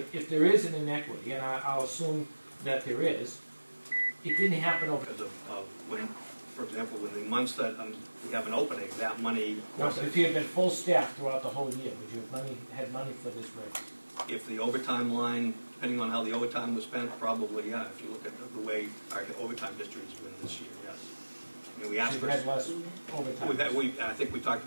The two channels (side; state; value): both; inverted; correlation -1.00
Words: there is an inequity, and I'll assume that there is, it didn't happen over. Because of when, for example, in the months that we have an opening, that money. No, but if you had been full staff throughout the whole year, would you have had money for this raise? If the overtime line, depending on how the overtime was spent, probably, yeah. If you look at the way our overtime district has been this year, yes. I mean, we asked So for. you had less overtime. I think we talked